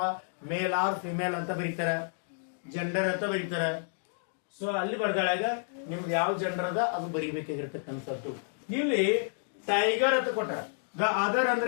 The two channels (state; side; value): silent; right; digital silence